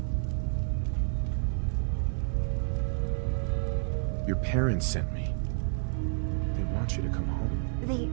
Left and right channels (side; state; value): left; silent; 58 dB below the other